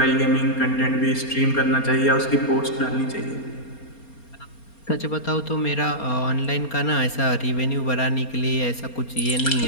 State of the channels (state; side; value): late; right; 4.3 ms